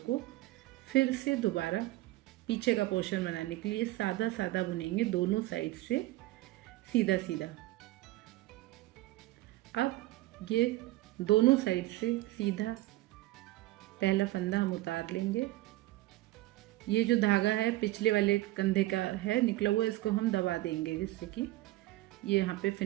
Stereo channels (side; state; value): left; quieter; 17.6 dB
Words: को फिर से दोबारा पीछे का पोर्शन बनाने के लिए सादा सादा बुनेंगे, दोनों साइड से सीधा सीधा। अब ये दोनों साइड से सीधा पहला फंदा हम उतार लेंगे। ये जो धागा है पिछले वाले कंधे का है निकला हुआ, इसको हम दबा देंगे जिससे कि ये यहाँ पे